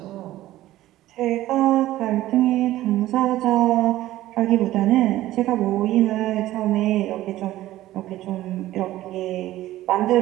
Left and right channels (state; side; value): quieter; left; 15.1 dB